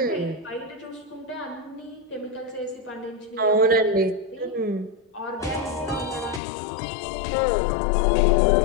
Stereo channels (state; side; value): drops out; right; at 6.4 s